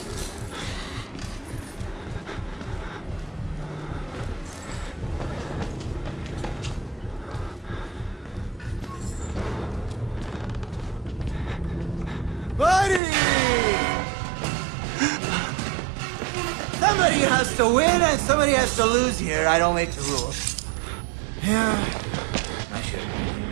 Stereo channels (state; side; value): drops out; left; at 13.0 s